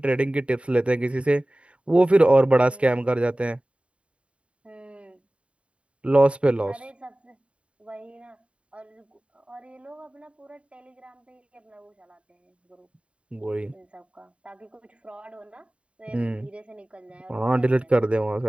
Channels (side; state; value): left; late; 0.061 ms